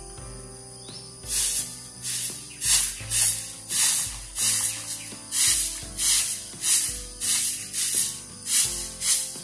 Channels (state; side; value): identical; both; correlation 1.00